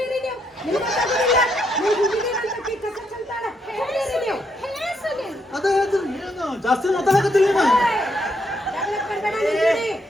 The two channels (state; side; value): normal; both; correlation 0.76